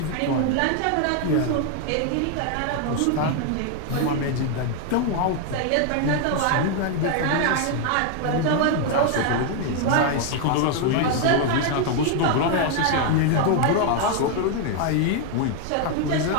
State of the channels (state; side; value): different; both; correlation 0.00